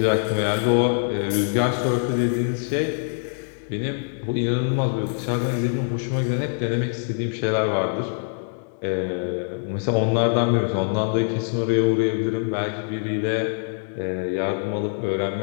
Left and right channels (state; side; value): silent; right; 63 dB below the other